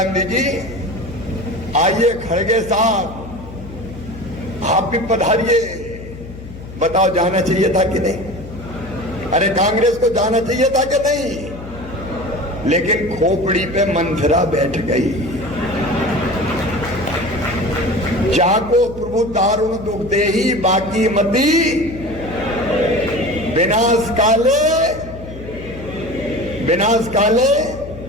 जी, आइए खड़गे साहब, आप भी पधारिए। बताओ जाना चाहिए था कि नहीं? अरे कांग्रेस को जाना चाहिए था कि नहीं? लेकिन खोपड़ी पे मंथरा बैठ गई। जाको प्रभु दारुण दुख दे ही बाकी मती, विनाश काले।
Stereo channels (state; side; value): noise; left; hum, 14 dB below the sound